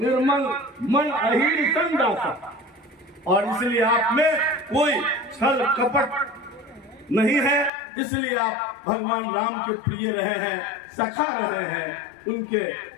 मन अहिर संदासा। और इसलिए आप में कोई छल कपट नहीं है, इसलिए आप भगवान राम के प्रिय रहे हैं, सखा रहे हैं, उनके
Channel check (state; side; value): drops out; right; at 7.7 s